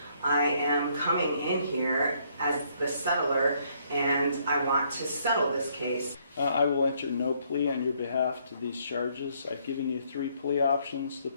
I am coming in here as the settler, and I want to settle this case. I will enter no plea on your behalf to these charges. I've given you 3 plea options to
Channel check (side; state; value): both; inverted; correlation -0.68